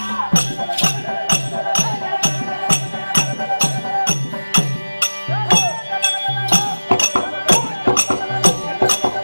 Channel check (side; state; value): both; inverted; correlation -1.00